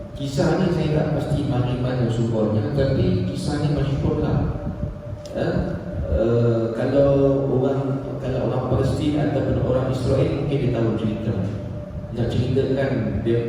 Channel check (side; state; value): both; identical; correlation 1.00